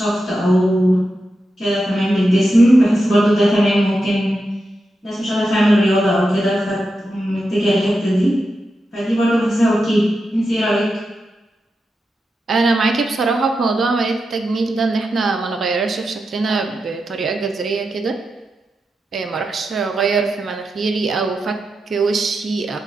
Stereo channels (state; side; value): normal; both; correlation 0.88